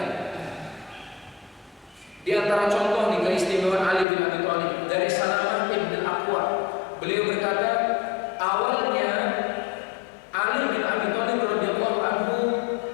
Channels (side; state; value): right; drops out; at 4.0 s